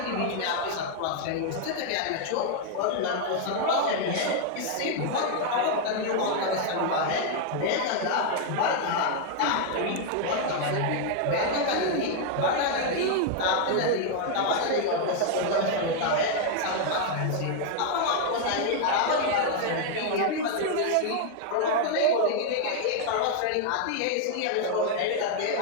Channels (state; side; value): different; both; correlation 0.00